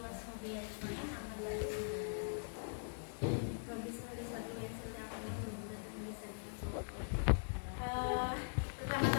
ajmain. Amma ba'du. Rabbi shrah li sadri wa yassir li amri wahlul 'uqdatam min lisani yafqahu qawli.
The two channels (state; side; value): silent; right; digital silence